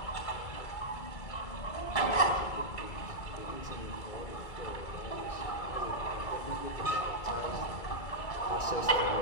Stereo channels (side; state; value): right; late; 2.3 ms